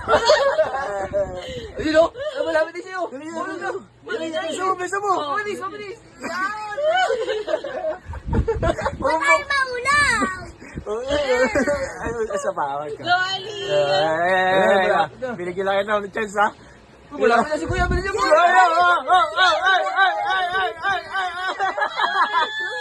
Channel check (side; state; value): both; identical; correlation 1.00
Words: Ayun o, malapit din sa'yo. Bisa mo. Mabilis. Yan. Ay, maulaw! Ay, sa bawal ka. Go, Ali! Binigyan lang ng chance, ha? Malapit na si Kuya. Bilisan mo.